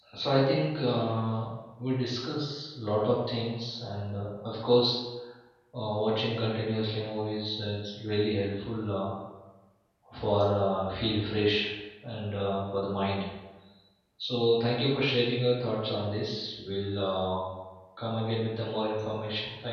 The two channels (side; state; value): both; identical; correlation 1.00